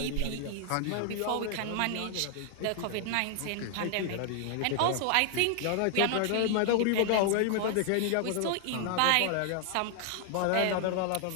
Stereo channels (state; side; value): different; both; correlation 0.00